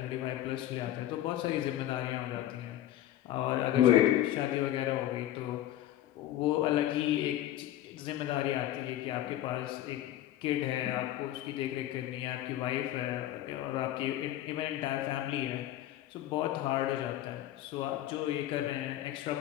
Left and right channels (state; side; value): quieter; right; 13.2 dB